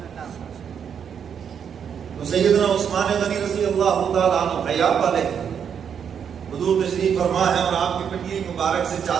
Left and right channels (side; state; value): left; quieter; 7.7 dB